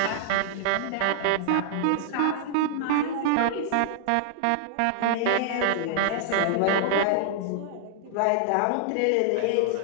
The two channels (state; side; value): different; both; correlation 0.00